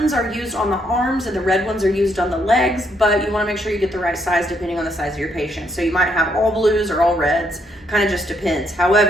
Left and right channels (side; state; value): both; normal; correlation 0.73